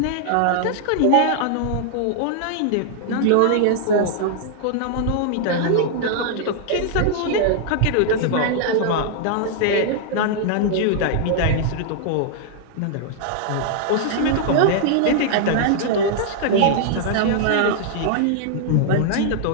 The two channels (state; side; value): different; both; correlation -0.01